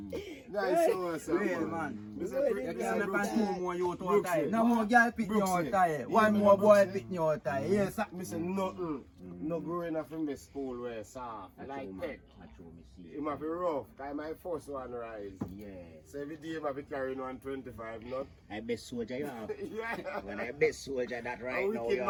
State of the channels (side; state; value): both; identical; correlation 1.00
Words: Nice so Real man. You can't make 2 more you to tie. No more girl pick me out tie. One more boy pick me out tie. Yes, sir. Me say nothing. No growing up in the school where soft. Like pet. It might be rough. Cause my first one rise. Yeah. So every day I might be carrying 125 nut. I best soldier you have. Yeah. When I best soldier that A right now wicked you